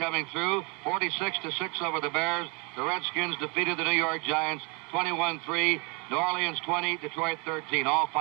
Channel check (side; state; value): left; quieter; 31.6 dB